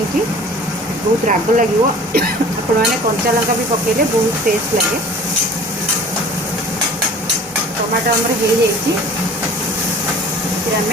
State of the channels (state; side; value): normal; both; correlation 0.46